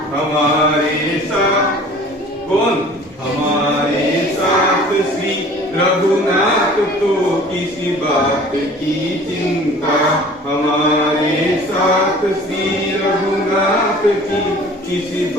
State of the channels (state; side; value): normal; both; correlation 0.47